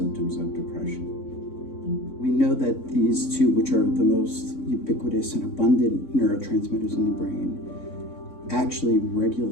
of depression. We know that these two, which are the most ubiquitous and abundant neurotransmitters in the brain, actually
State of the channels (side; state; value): right; late; 3.6 ms